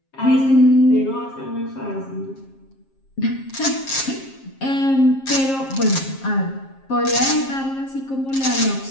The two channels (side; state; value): right; late; 7.5 ms